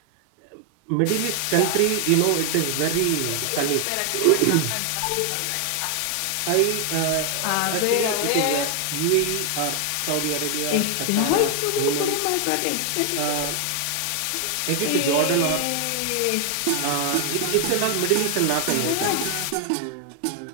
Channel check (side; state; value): both; different; correlation 0.00